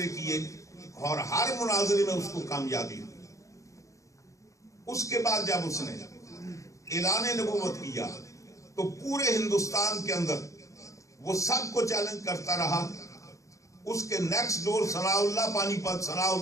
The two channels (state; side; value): late; right; 0.15 ms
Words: کیے، اور ہر مناظرے میں اس کو کامیابی ہوئی. اس کے بعد جب اس نے اعلان نبوت کیا تو پورے ہندوستان کے اندر وہ سب کو چیلنج کرتا رہا. اس کے نیکسٹ ڈور ثناء اللہ پانی پت، ثناء